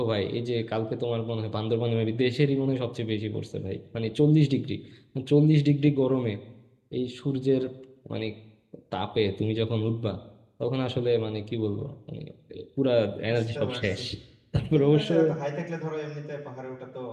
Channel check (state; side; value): identical; both; correlation 1.00